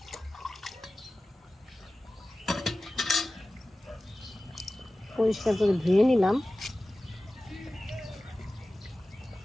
পরিষ্কার করে ধুয়ে নিলাম।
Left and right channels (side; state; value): both; normal; correlation 0.96